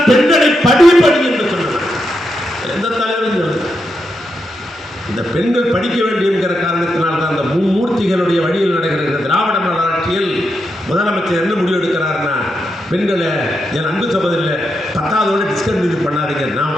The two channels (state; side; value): normal; both; correlation 0.84